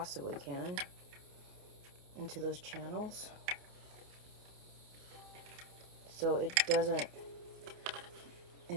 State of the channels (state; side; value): late; left; 28 ms